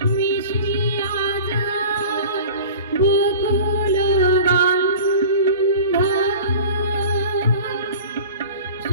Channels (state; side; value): inverted; both; correlation -0.39